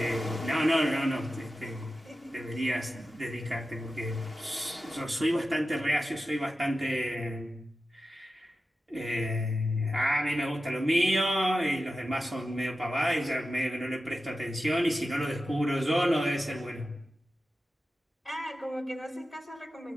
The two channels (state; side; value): normal; both; correlation 0.93